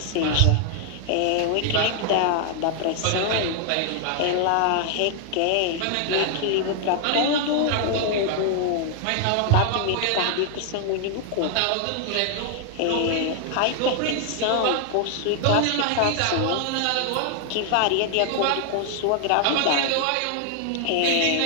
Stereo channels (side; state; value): both; different; correlation 0.00